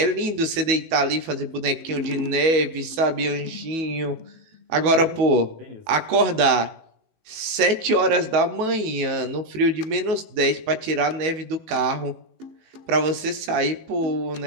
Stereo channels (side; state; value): left; late; 18 ms